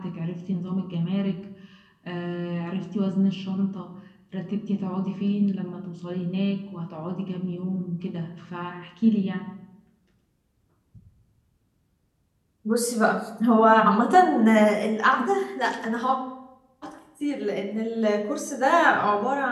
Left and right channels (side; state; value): both; identical; correlation 1.00